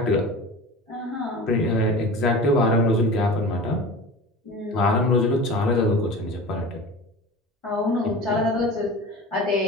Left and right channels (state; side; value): normal; both; correlation 0.34